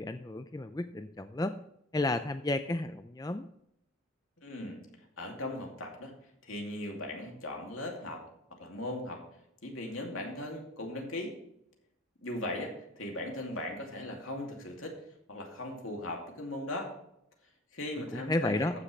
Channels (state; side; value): normal; both; correlation 0.45